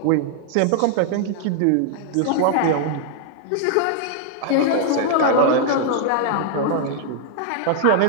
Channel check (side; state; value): both; different; correlation -0.01